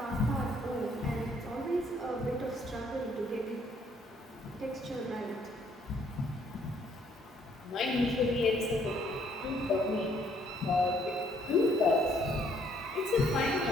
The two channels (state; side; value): normal; both; correlation 0.66